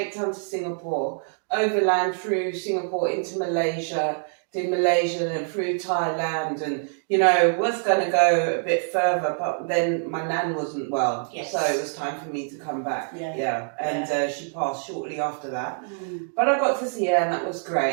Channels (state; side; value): silent; left; digital silence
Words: Town to Singapore, overland through Singapore into Malaysia, did Malaysia and through Thailand, and was going to go a bit further, but then my nan wasn't well, so it was time for me to come back. And she passed shortly after that. But I got to see her, and that was